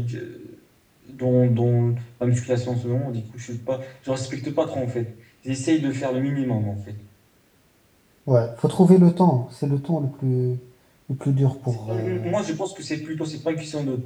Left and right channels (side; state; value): both; identical; correlation 1.00